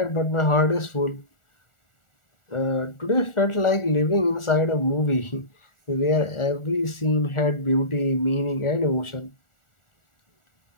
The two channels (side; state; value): right; late; 1.4 ms